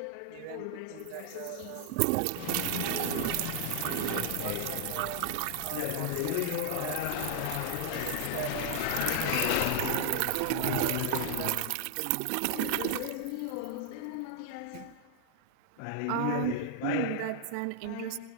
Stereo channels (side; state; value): both; different; correlation -0.01